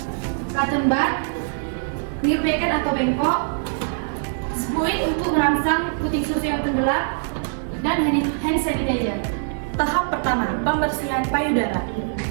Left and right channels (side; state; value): left; silent; 64 dB below the other